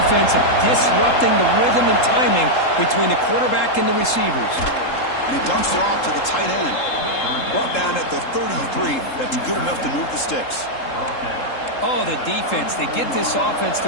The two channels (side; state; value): right; late; 3.7 ms